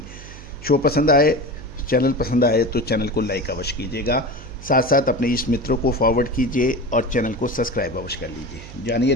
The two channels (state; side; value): noise; right; hum, 15 dB below the sound